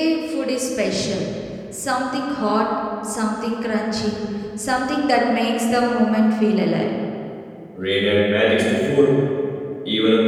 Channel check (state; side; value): identical; both; correlation 1.00